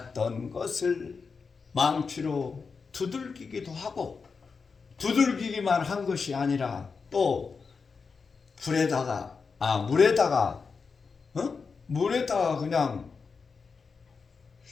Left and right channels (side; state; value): right; quieter; 5.1 dB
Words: 것을 망치로 두들기기도 하고, 두들기기만 한 것이 아니라 또 물에다가 그냥